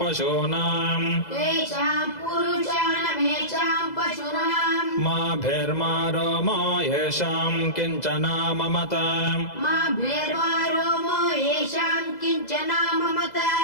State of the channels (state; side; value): late; right; 2.0 ms